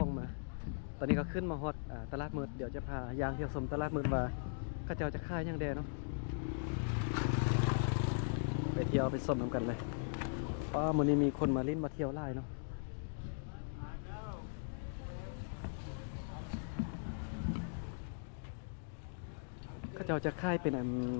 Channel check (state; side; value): silent; right; digital silence